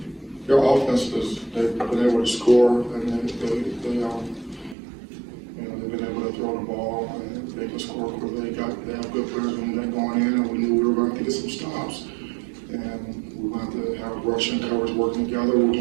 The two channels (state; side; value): drops out; left; at 4.8 s